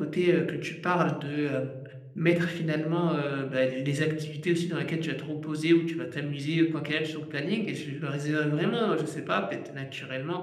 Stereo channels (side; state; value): both; identical; correlation 1.00